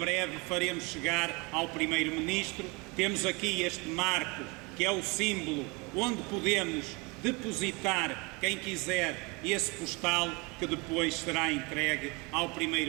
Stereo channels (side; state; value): left; quieter; 27.7 dB